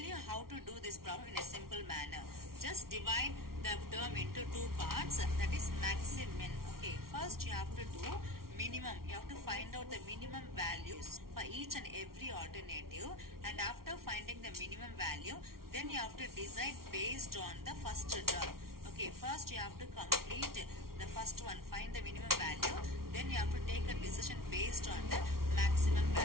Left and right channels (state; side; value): late; left; 0.93 ms